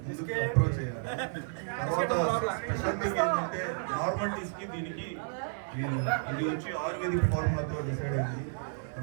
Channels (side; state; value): left; silent; 57 dB below the other